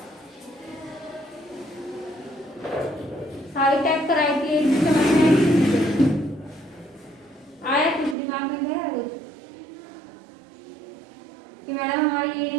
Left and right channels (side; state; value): left; drops out; at 8.2 s